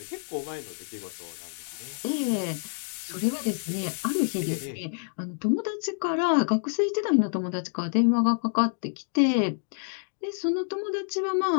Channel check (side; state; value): right; silent; digital silence